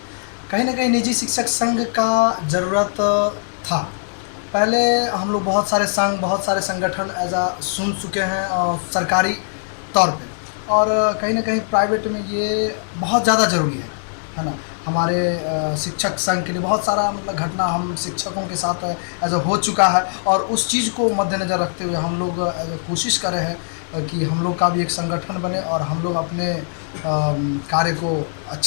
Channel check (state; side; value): silent; right; 65 dB below the other